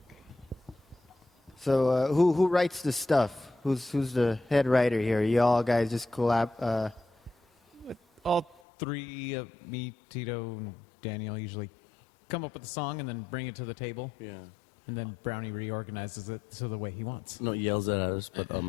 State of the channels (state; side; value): drops out; right; at 8.6 s